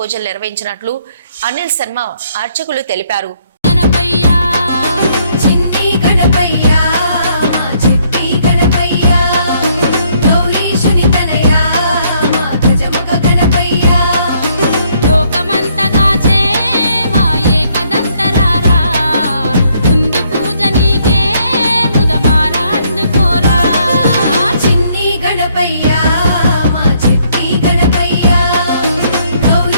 నిర్వహించినట్లు అనిల్ శర్మ అర్చకులు తెలిపారు.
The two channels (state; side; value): inverted; both; correlation -0.68